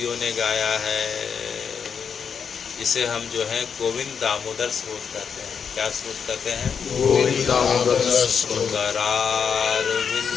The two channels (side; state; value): right; quieter; 6.7 dB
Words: ने गाया है। इसे हम जो है गोविंद दामोदर स्रोत कहते हैं। क्या स्रोत कहते हैं? गोविंद दामोदर स्रोत। करारविंदेन